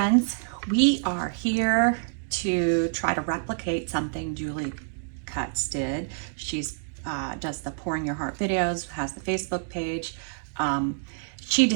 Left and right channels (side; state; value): left; silent; digital silence